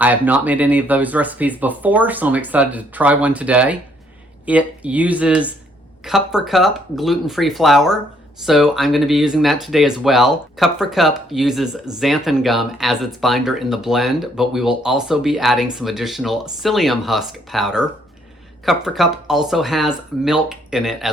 I have not made any of those recipes before, so I'm excited to try one today. It uses cup for cup gluten-free flour, so I'm going to be using that today as well. Cup for Cup uses xanthan gum as its binder in the blend, but we will also be adding some additional psyllium husk powder. Cup for Cup also has milk in it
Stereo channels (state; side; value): normal; both; correlation 0.67